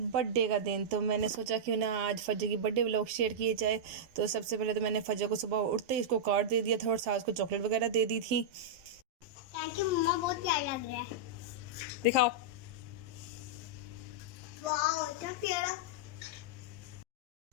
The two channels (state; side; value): late; left; 12 ms